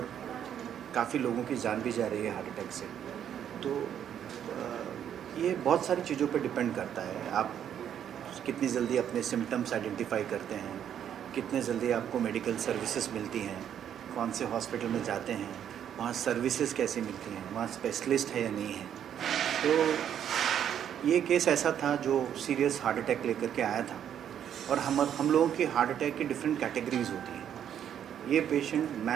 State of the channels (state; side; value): quieter; left; 9.4 dB